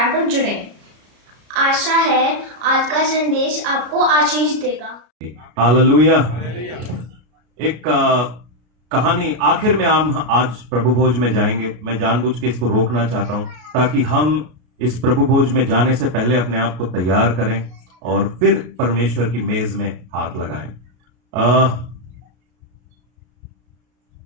पर जुड़ें। आशा है आज का संदेश आपको आशीष देगा। हालेलुया। एक कहानी आखिर में हम आज प्रभु भोज में जाएंगे। मैं जानबूझ के इसको रोकना चाहता हूं ताकि हम इस प्रभु भोज में जाने से पहले अपने आप को तैयार करें और फिर परमेश्वर की मेज में हाथ लगाएं।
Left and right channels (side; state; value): left; late; 33 ms